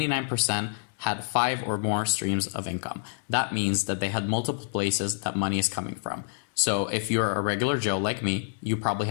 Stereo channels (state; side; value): silent; right; digital silence